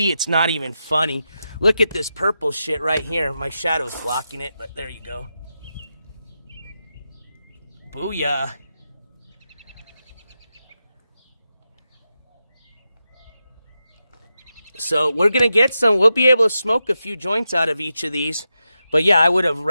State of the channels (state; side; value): inverted; both; correlation -0.88